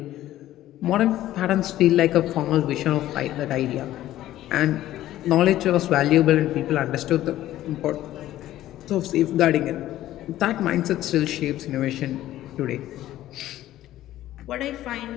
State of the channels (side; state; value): right; quieter; 13.9 dB